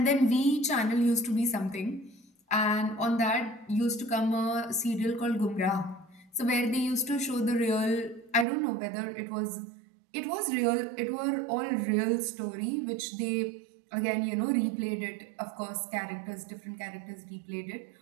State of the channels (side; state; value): left; drops out; at 8.5 s